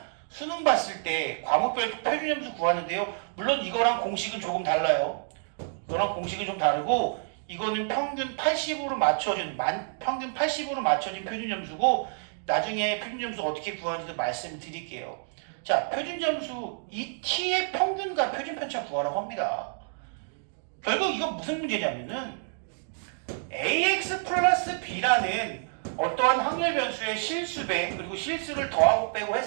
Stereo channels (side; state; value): left; silent; digital silence